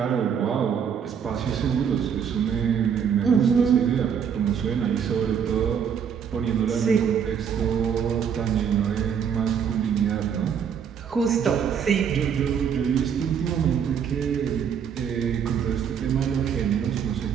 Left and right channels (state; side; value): quieter; left; 7.6 dB